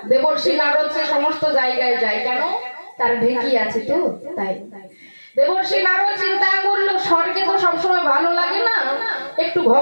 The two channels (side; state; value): both; inverted; correlation -1.00